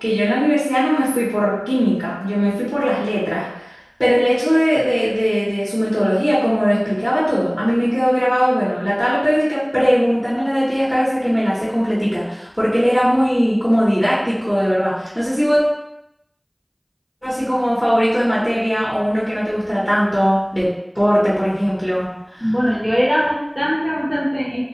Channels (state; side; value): identical; both; correlation 1.00